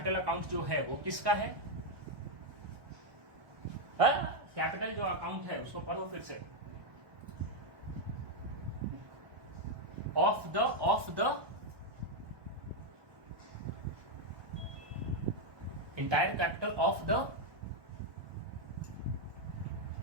अकाउंट जो है वो किसका है, कैपिटल जो अकाउंट है उसको पढ़ो फिर से, of the entire capital of the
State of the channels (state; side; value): late; left; 1.1 ms